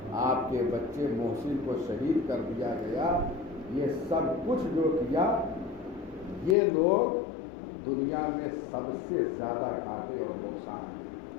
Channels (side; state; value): right; drops out; at 6.6 s